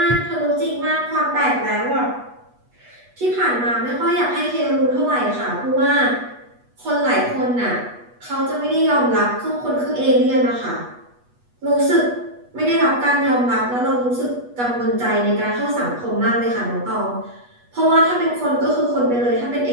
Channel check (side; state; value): left; late; 8.2 ms